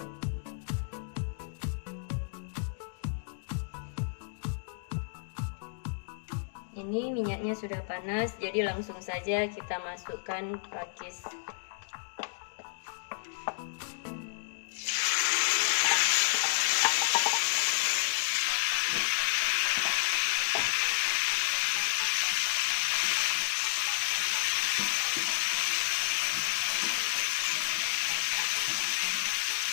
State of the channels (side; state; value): right; silent; digital silence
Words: Ini minyaknya sudah panas, jadi langsung saja kita masukkan pakis.